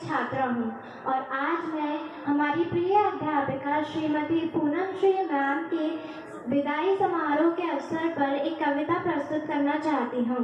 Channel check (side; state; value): both; identical; correlation 1.00